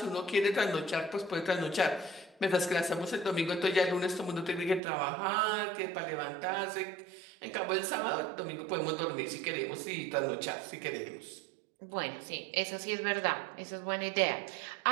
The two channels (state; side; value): drops out; left; at 4.8 s